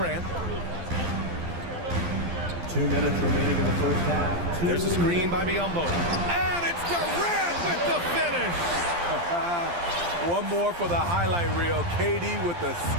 2 minutes remaining in the first half. There's a screen by Biyombo. And it's Durant with the finish. One more for the highlight reel. KD with the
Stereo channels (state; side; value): late; left; 12 ms